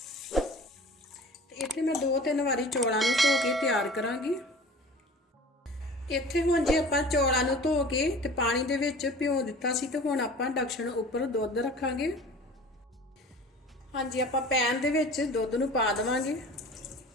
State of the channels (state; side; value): normal; both; correlation 0.42